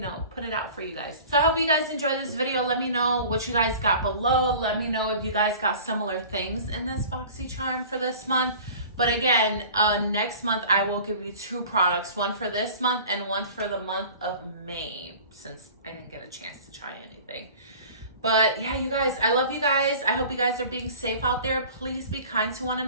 put it out for you guys. So I hope you guys enjoyed this video. Let me know what you guys got below. Let me know if you guys got similar things in this BoxyCharm for this month. But again, next month I will give you 2 products, one for this month and one for the month of May, since I didn't get a chance to try anything. But yeah, you guys, I love you guys. I hope you guys are being safe out there. Please be kind to one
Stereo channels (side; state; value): both; inverted; correlation -0.43